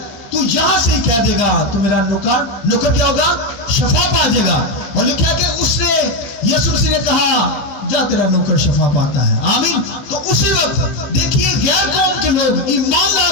تو یہاں سے ہی کہہ دے گا تو میرا نوکر کیا ہوگا, شفا پا جائے گا. اور لکھا ہے کہ اس نے, یسوع مسیح نے کہا جا, تیرا نوکر شفا پاتا ہے. آمین. تو اسی وقت دیکھیے غیر قوم کے لوگ ایمان لا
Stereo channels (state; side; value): late; right; 16 ms